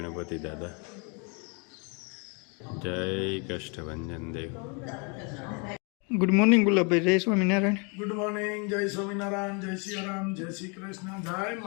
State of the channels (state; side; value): quieter; right; 34.0 dB